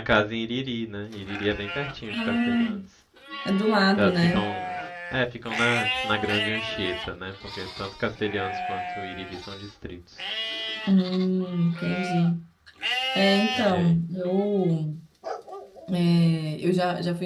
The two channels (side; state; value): both; identical; correlation 1.00